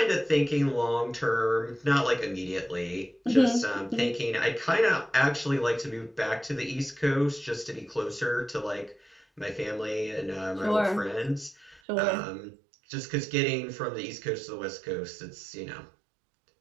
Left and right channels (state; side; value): drops out; left; at 11.8 s